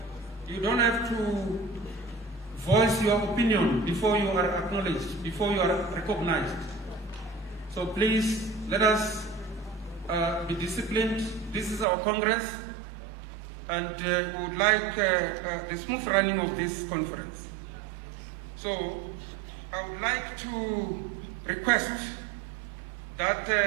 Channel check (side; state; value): left; drops out; at 11.9 s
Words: You don't have to voice your opinion before you are acknowledged, before you are recognized. So please, let us be disciplined. This is our Congress, and we would like the smooth running of this conference. So I would like to request that